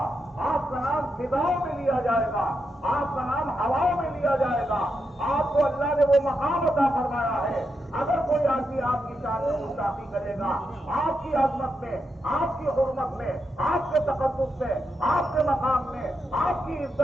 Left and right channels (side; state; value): both; normal; correlation 0.84